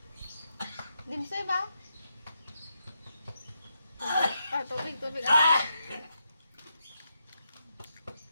Dimsoy ba? Tubig. Tubig. Ah!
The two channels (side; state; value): both; inverted; correlation -0.83